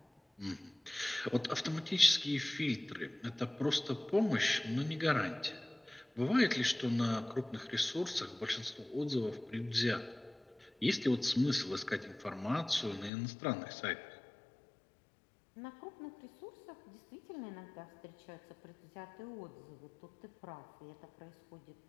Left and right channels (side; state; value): right; drops out; at 13.1 s